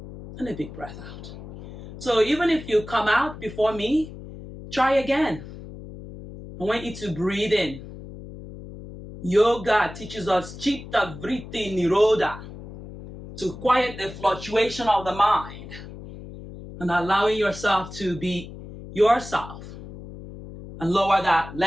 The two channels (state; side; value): noise; left; hum, 14 dB below the sound